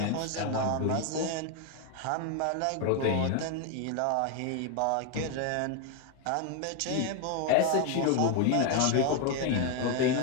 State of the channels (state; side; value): different; both; correlation 0.01